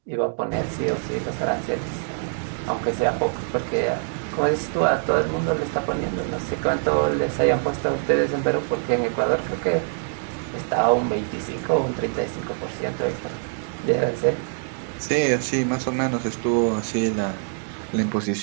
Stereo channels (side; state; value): left; silent; digital silence